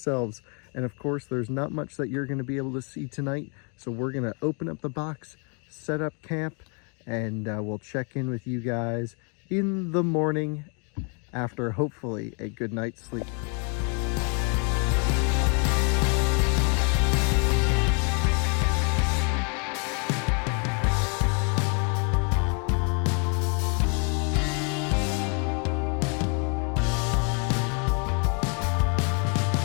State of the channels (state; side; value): quieter; right; 37.3 dB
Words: And of course, there's not much that you're gonna be able to see tonight. So we're gonna open up the box, set up camp, and we'll check in with you guys in the morning after hopefully a good night's sleep.